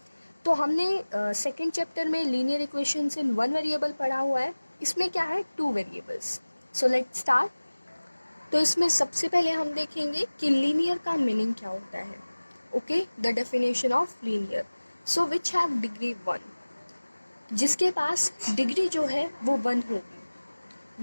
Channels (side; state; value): both; inverted; correlation -1.00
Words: तो हमने second chapter में linear equations in one variable पढ़ा हुआ है. इसमें क्या है two variables. So let's start. तो इसमें सबसे पहले हम देखेंगे कि लीनियर का मीनिंग क्या होता है. Okay, the definition of linear. So which have degree 1, जिसके पास डिग्री जो है वो 1